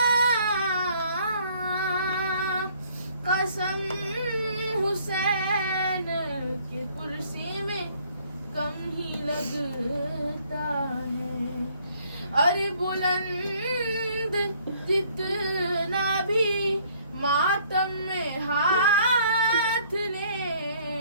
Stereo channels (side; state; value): both; inverted; correlation -0.61